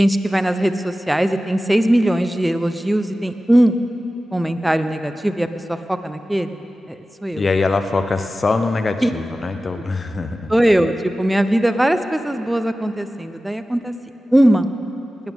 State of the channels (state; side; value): normal; both; correlation 0.95